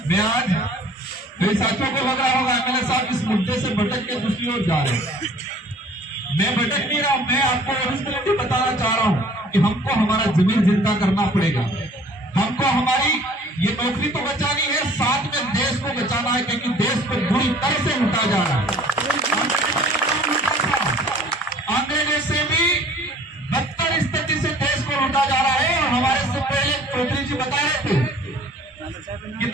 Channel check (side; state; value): both; normal; correlation 0.52